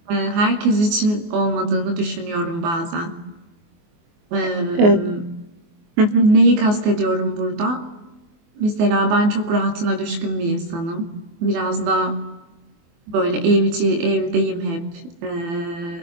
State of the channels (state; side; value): late; left; 24 ms